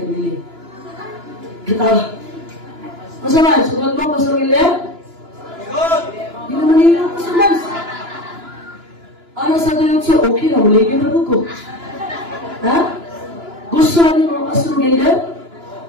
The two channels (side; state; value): left; late; 2.9 ms